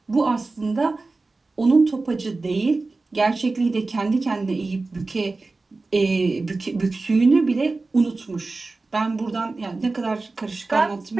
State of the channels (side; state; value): left; quieter; 3.5 dB